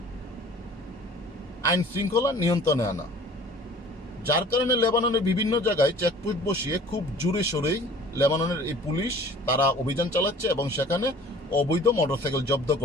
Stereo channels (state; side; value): normal; both; correlation 0.48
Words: আইন শৃঙ্খলা নিয়ন্ত্রণে আনা, যার কারণে লেবাননের বিভিন্ন জায়গায় চেকপোস্ট বসিয়ে খুব জোরে সোরেই লেবাননের এই পুলিশ তারা অভিযান চালাচ্ছে এবং সেখানে অবৈধ মোটরসাইকেল জব্দ